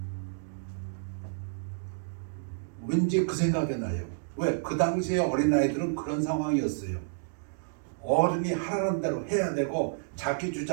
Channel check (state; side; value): silent; left; digital silence